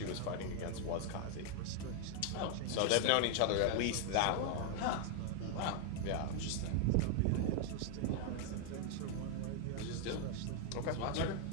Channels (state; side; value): different; both; correlation 0.00